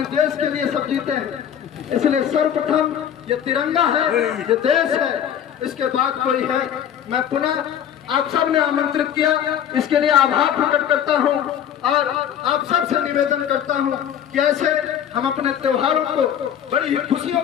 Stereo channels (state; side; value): quieter; right; 9.5 dB